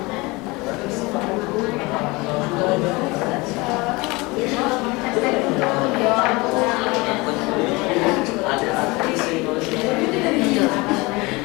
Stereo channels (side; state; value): right; quieter; 24.2 dB